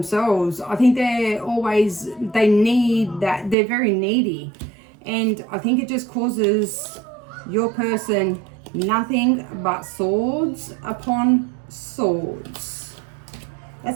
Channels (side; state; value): left; drops out; at 3.6 s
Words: I think they need that, they're very needy. And I think it just causes your person nothing but swords upon swords.